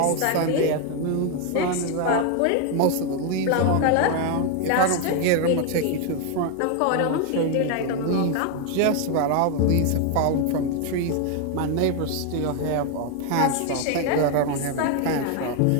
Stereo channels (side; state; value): both; different; correlation 0.01